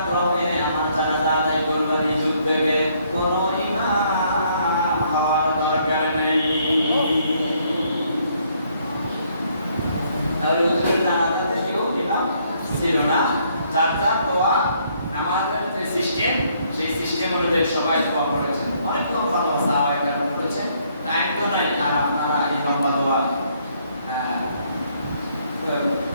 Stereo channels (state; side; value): inverted; both; correlation -0.68